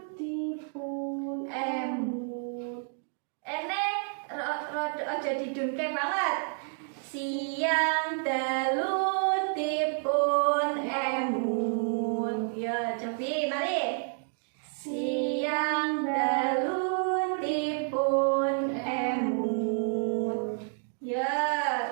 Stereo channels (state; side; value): silent; left; 58 dB below the other